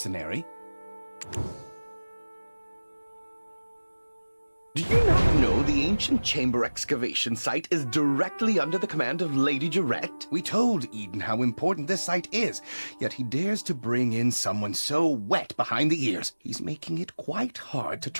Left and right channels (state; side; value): inverted; both; correlation -1.00